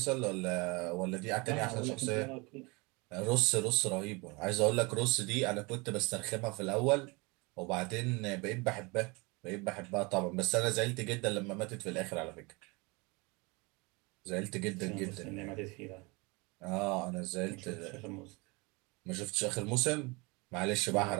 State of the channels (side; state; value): left; quieter; 27.1 dB